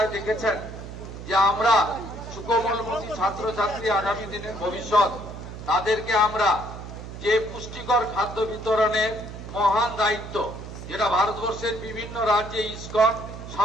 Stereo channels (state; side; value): noise; right; hum, 11 dB below the sound